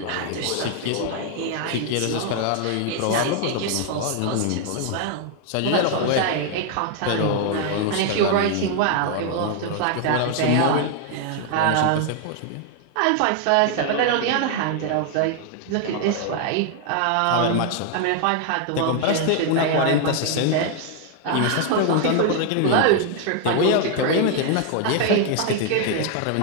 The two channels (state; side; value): different; both; correlation 0.00